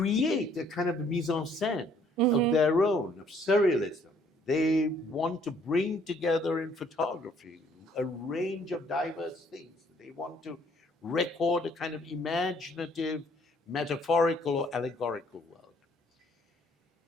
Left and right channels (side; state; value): both; normal; correlation 0.62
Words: a kind of mise en scène of their own, of surrealism. They want to bring together in photography a range of diverse things. They want to record a kind of imaginative, metaphorical, or allegorical world.